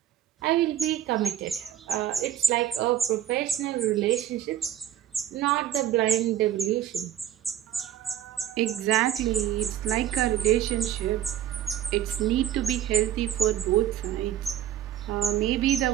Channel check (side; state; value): left; quieter; 10.9 dB